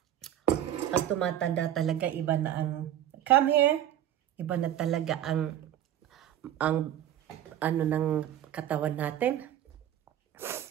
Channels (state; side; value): quieter; left; 11.3 dB